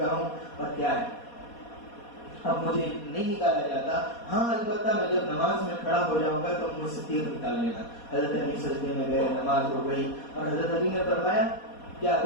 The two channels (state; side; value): late; right; 4.2 ms